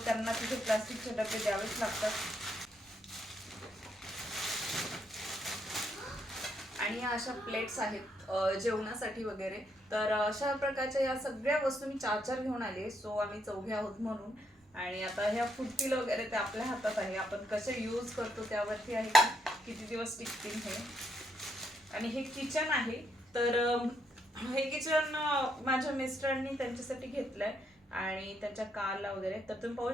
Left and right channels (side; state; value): both; normal; correlation 0.76